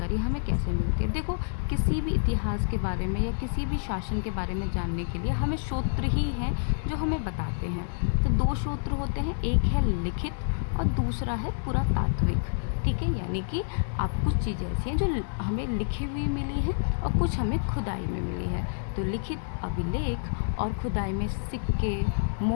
हमें कैसे मिलती है। देखो, किसी भी इतिहास के बारे में या किसी भी शासन के बारे में जानने के लिए हमें स्रोत ही हैं जो हमें बताते हैं। तो 2 स्रोत होते हैं, एक है लिखित और दूसरा है पुरातात्विक। ठीक है, यानी कि आप कुछ चीज़ें ऐसी हैं जो हमें लिखी हुई मिली हैं और कुछ हमें खुदाई में मिली है। तो लिखित अभिलेख और खुदाई में सिक्के,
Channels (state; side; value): silent; right; digital silence